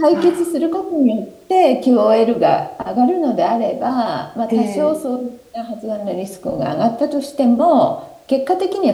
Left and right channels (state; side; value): identical; both; correlation 1.00